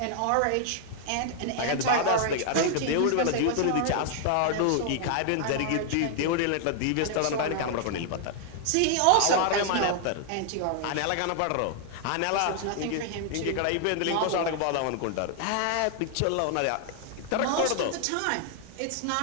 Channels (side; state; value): both; different; correlation 0.00